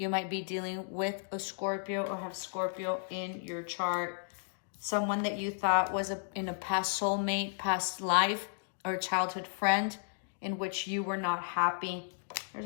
might be dealing with a Scorpio or have Scorpio in your chart. Someone that you thought was in a past soulmate, past life, or a childhood friend in which you were not happy.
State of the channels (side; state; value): right; silent; digital silence